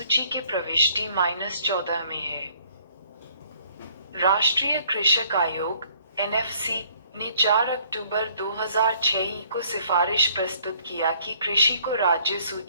के प्रविष्टि -14 में है। राष्ट्रीय कृषक आयोग (एनएफसी) ने 4 अक्टूबर 2006 को सिफारिश प्रस्तुत किया कि कृषि को राज्य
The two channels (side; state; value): both; inverted; correlation -0.60